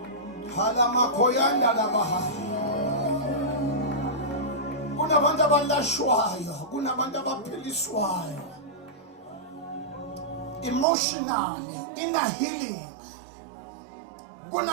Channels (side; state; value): left; drops out; at 10.9 s